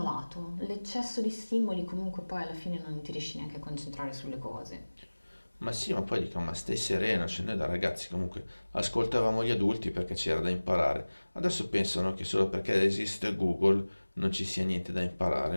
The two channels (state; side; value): inverted; both; correlation -1.00